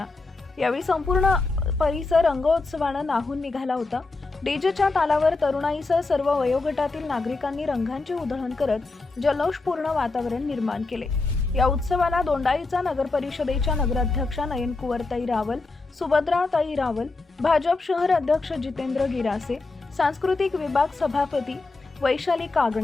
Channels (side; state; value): right; quieter; 3.6 dB